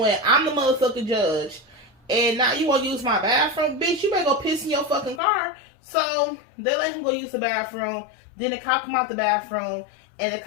I'm the motherfucking judge, and now you wanna use my bathroom? Bitch, you better go piss in your fucking car. So they let him go use the bathroom. Then the cop come out the bathroom, and the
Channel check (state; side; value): drops out; right; at 5.2 s